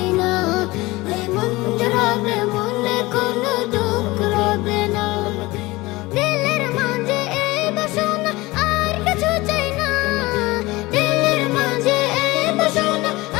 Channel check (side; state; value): right; quieter; 20.9 dB